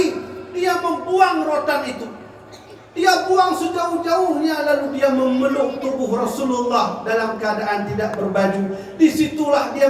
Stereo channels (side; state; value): both; identical; correlation 1.00